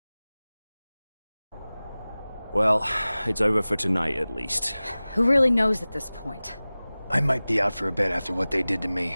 Well, it's over for tonight at least. Who really knows at this point? I might be out for a bit after what they did to me.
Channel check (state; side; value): inverted; both; correlation -0.98